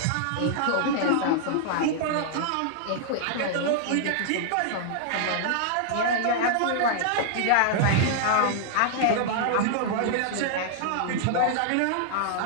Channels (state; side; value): different; both; correlation -0.01